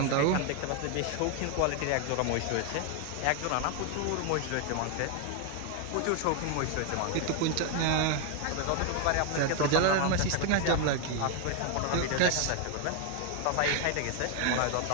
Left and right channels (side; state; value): both; different; correlation 0.01